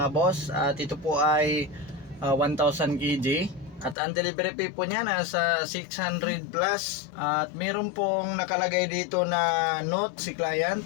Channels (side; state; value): right; drops out; at 4.0 s